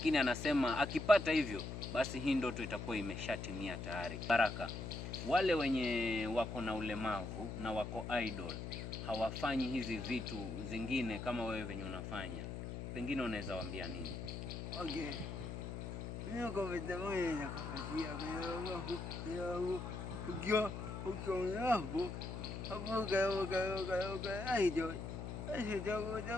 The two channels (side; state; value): left; noise; hum, 6 dB below the sound